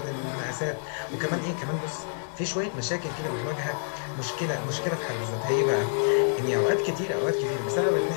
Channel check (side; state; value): right; silent; digital silence